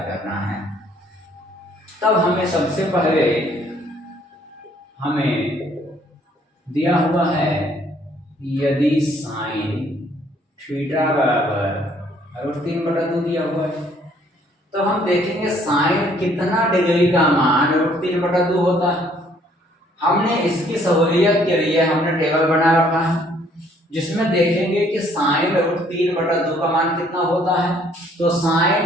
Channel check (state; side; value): normal; both; correlation 0.63